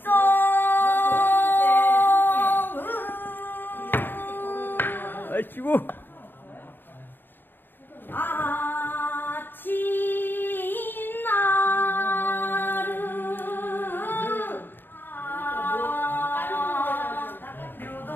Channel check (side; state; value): right; late; 0.096 ms